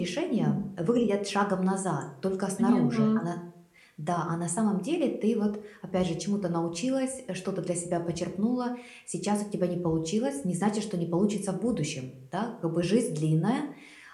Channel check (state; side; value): identical; both; correlation 1.00